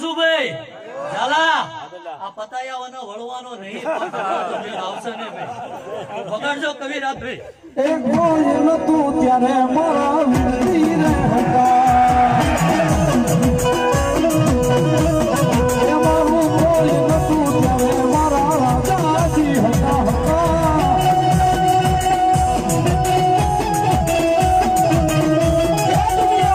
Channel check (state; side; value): identical; both; correlation 1.00